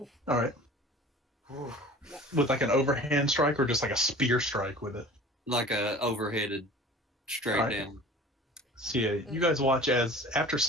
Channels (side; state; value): both; normal; correlation 0.43